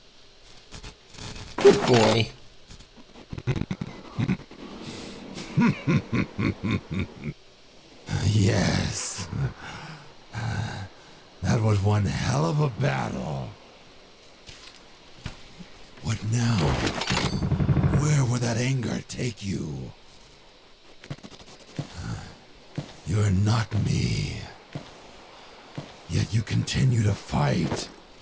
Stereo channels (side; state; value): both; identical; correlation 1.00